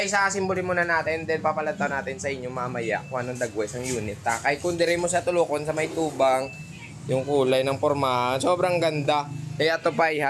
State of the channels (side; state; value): both; identical; correlation 1.00